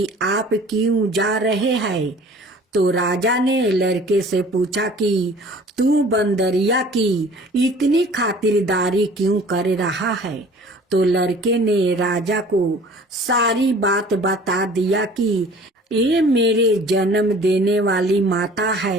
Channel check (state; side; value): normal; both; correlation 0.48